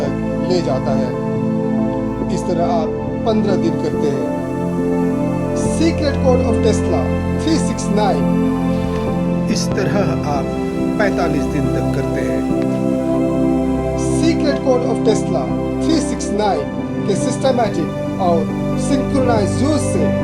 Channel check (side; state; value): both; identical; correlation 1.00